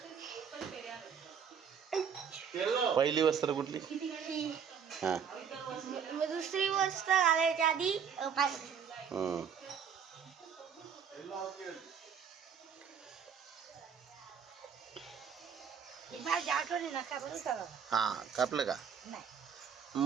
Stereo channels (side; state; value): left; quieter; 7.3 dB